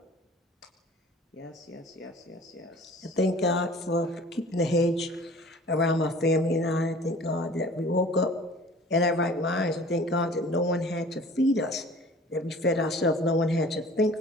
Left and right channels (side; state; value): both; normal; correlation 0.46